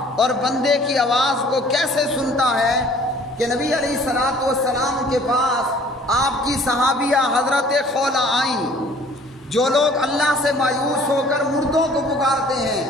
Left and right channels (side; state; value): both; normal; correlation 0.53